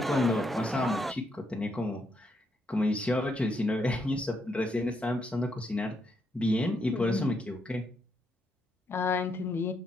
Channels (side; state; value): both; normal; correlation 0.77